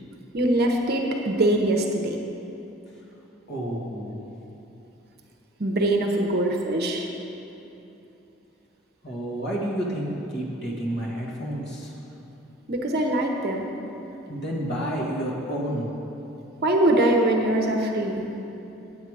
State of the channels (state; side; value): normal; both; correlation 0.46